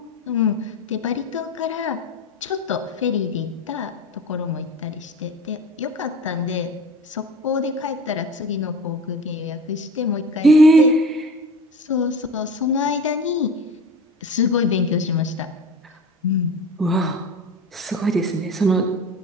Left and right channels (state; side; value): normal; both; correlation 0.34